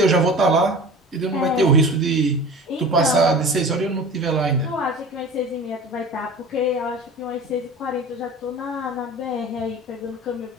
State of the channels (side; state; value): both; normal; correlation 0.38